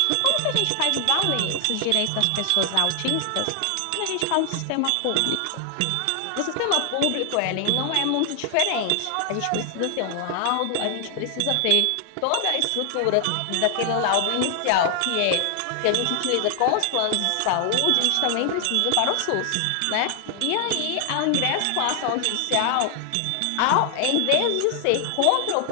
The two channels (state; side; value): different; both; correlation 0.00